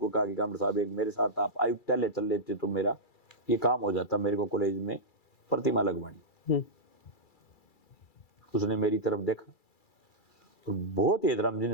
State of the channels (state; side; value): late; right; 2.3 ms